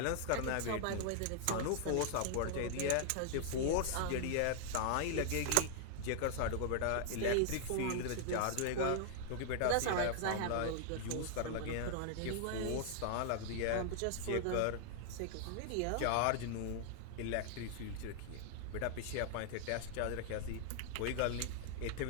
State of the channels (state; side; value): different; both; correlation -0.01